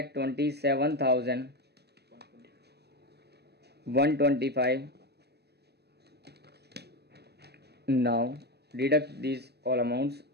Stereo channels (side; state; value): left; late; 0.48 ms